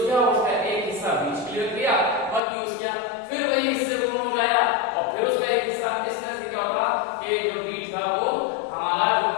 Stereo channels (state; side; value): drops out; right; at 2.4 s